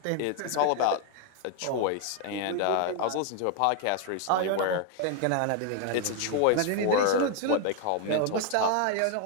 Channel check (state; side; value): different; both; correlation 0.00